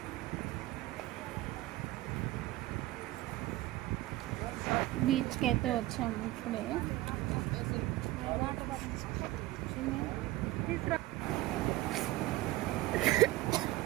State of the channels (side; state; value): left; quieter; 17.5 dB